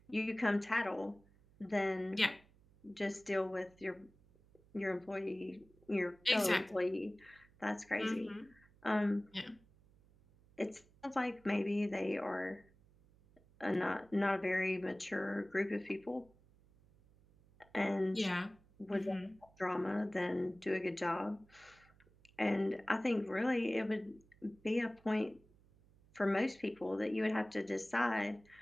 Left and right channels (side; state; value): right; noise; hum, 28 dB below the sound